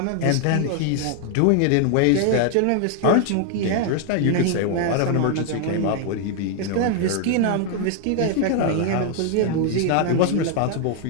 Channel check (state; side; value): different; both; correlation 0.00